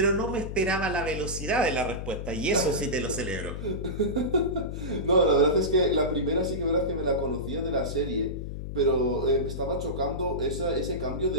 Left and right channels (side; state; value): left; noise; hum, 7 dB below the sound